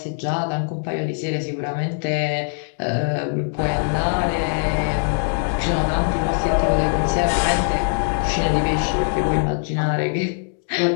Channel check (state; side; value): silent; right; 64 dB below the other